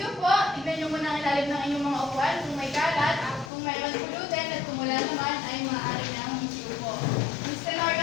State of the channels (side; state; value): right; drops out; at 3.5 s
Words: tignan nyo muna ang ilalim ng inyong mga upuan kung may kalat, kung mayroon pulutin at kung wala naman ay maaari na ang magsiupo. Mr.